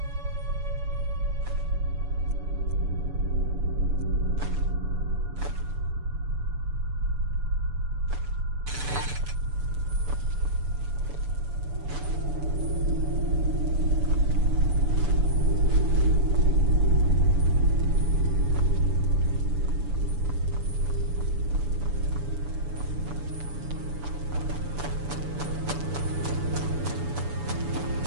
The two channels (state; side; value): late; left; 7.0 ms